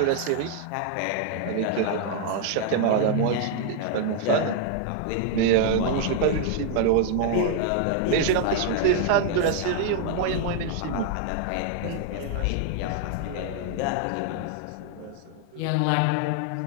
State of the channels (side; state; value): both; different; correlation 0.00